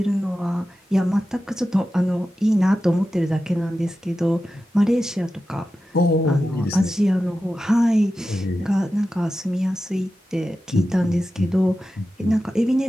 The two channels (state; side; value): normal; both; correlation 0.92